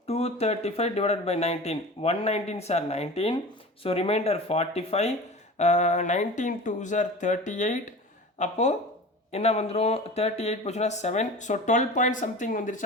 235 divided by 19, 119s are 19, so remainder 45, 19 2s are 38, அப்போ என்ன வந்துடும்? 38 போச்சுன்னா 7, ஸோ 12 பாயிண்ட் சம்திங்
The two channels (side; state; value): both; normal; correlation 0.35